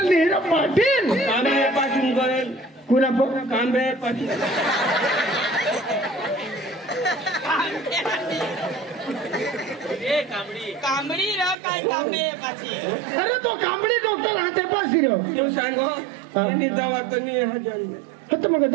नाही हिरा पाटील कांबे पासून गोयल कुणा पण कांबे पासून कांबडी रा काय कांबे पाची अरे तो कांबडी डॉक्टर राहते पास हिरो तू सांगो यांनी दवाखानी हा जन्म फक्त मग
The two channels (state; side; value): drops out; left; at 11.6 s